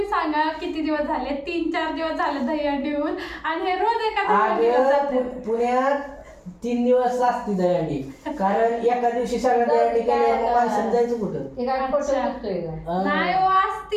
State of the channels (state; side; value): identical; both; correlation 1.00